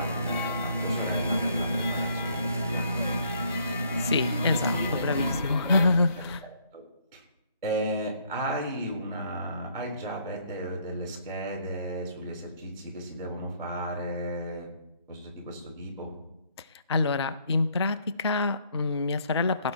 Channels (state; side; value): inverted; both; correlation -0.66